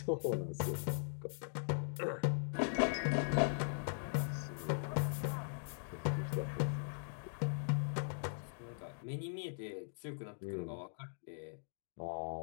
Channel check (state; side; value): silent; right; digital silence